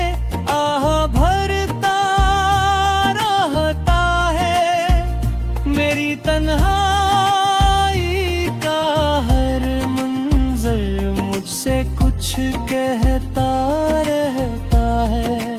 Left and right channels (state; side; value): identical; both; correlation 1.00